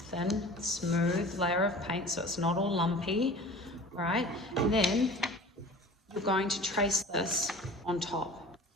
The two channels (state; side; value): normal; both; correlation 0.41